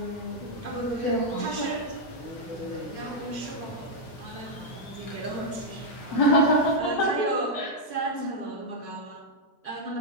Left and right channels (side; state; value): right; late; 4.6 ms